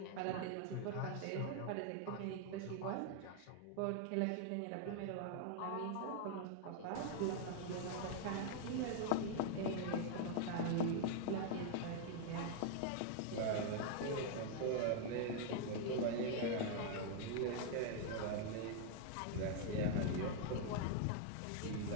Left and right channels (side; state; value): both; different; correlation 0.00